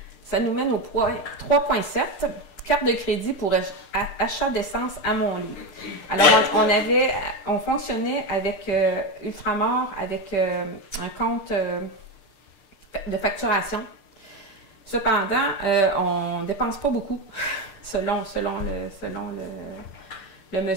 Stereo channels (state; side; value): late; right; 6.7 ms